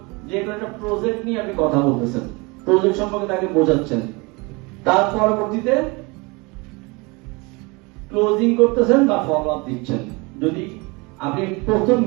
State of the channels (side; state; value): left; quieter; 26.9 dB